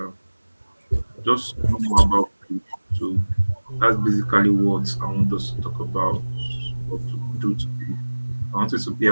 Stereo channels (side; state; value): both; inverted; correlation -1.00